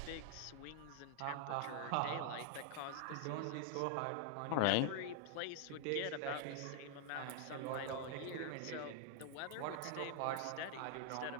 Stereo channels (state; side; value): different; both; correlation 0.00